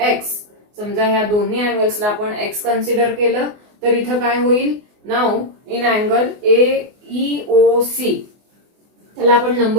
X. समजा ह्या दोन्ही अँगल्सला आपण X कन्सिडर केलं तर इथं काय होईल. नाउ इन अँगल EOC त्याला आपण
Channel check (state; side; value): late; left; 24 ms